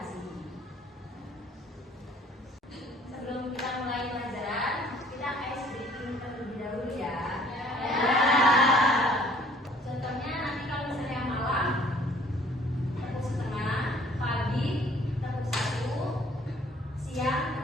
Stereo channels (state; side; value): normal; both; correlation 0.57